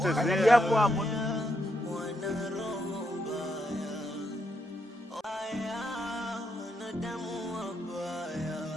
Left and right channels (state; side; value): normal; both; correlation 0.79